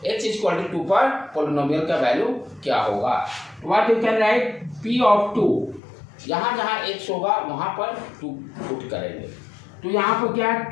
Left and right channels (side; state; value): right; drops out; at 5.8 s